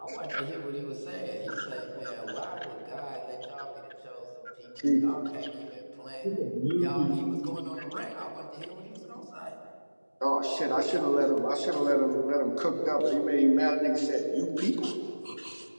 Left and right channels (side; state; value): both; inverted; correlation -1.00